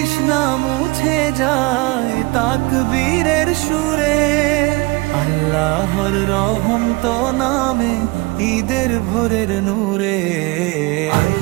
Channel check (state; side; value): quieter; left; 24.5 dB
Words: মুছে যায় তাকবীরের সুরে, আল্লাহর রহম তো নামে ঈদের ভোরের নূরে।